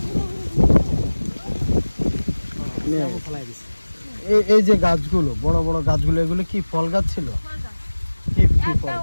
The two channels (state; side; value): inverted; both; correlation -1.00